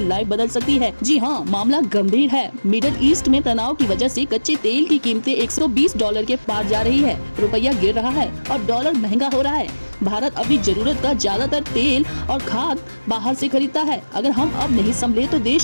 बदल सकती है। जी हाँ, मामला गंभीर है। मिडिल ईस्ट में तनाव की वजह से कच्चे तेल की कीमतें $120 के पार जा रही है। रुपया गिर रहा है और डॉलर महंगा हो रहा है। भारत अपनी जरूरत का ज्यादातर तेल और खाद बाहर से खरीदता है। अगर हम अब नहीं संभले तो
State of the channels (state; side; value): inverted; both; correlation -1.00